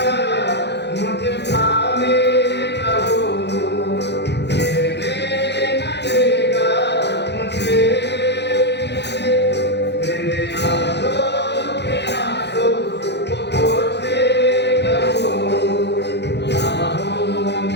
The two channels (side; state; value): right; late; 0.50 ms